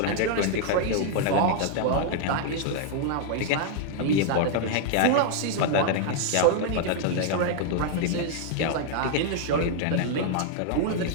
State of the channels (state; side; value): different; both; correlation 0.00